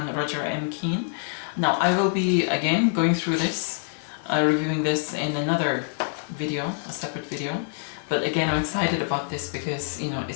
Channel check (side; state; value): right; silent; 61 dB below the other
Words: Roger M. Keane. Now, I will be, again, going through this, reviewing this in another video, a separate video. But again, I'm excited about this because, you know,